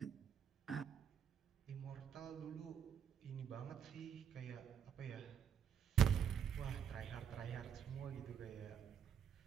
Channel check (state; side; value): quieter; left; 8.0 dB